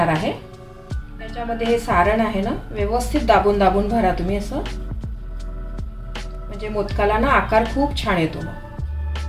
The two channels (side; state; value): both; identical; correlation 1.00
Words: आहे. त्याच्यामध्ये हे सारण आहे ना, व्यवस्थित दाबून दाबून भरा तुम्ही असं, म्हणजे मोदकाला ना आकार खूप छान येतो.